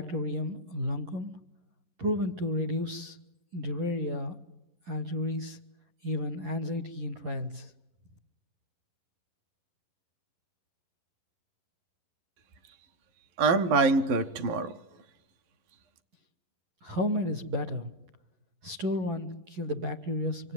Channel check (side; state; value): left; late; 11 ms